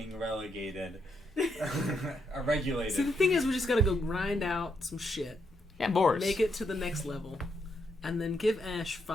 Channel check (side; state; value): both; normal; correlation 0.78